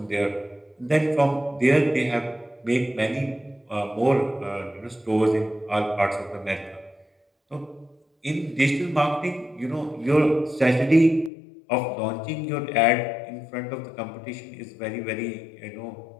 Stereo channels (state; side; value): drops out; right; at 11.3 s